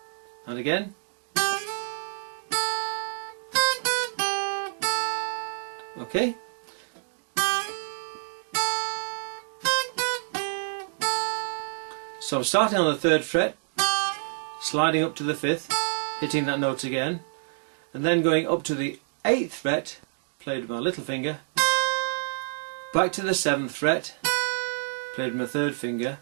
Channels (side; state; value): left; silent; digital silence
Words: And again. Okay. So I'm starting on the 3rd fret, sliding up to the 5th, hitting that note again, and then going up to the 8th fret, played with my little finger, back to the 7th fret, played with my 3rd finger,